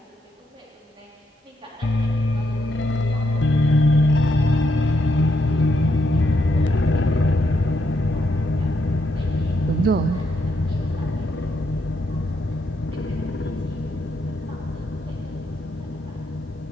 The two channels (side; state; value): both; normal; correlation 0.78